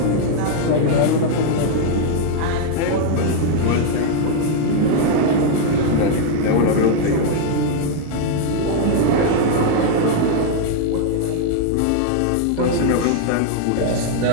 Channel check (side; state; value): both; different; correlation 0.00